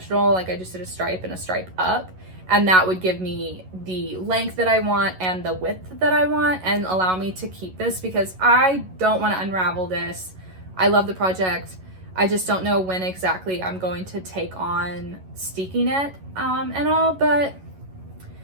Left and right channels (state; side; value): late; left; 11 ms